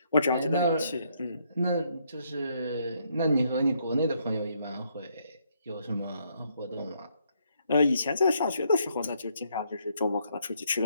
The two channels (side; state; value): both; inverted; correlation -0.72